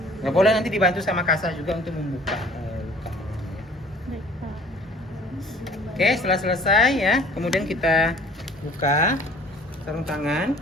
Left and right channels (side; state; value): both; normal; correlation 0.53